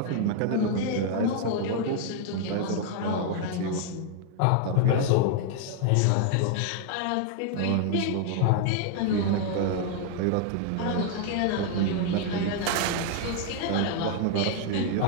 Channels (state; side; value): different; both; correlation 0.00